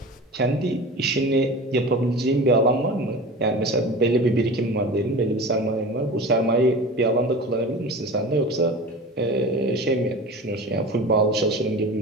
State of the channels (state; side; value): normal; both; correlation 0.34